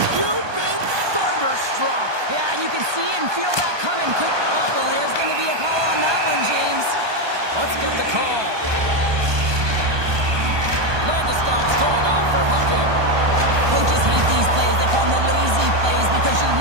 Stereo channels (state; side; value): late; left; 1.2 ms